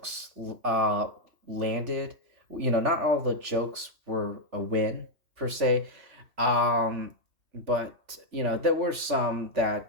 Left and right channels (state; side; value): late; left; 3.4 ms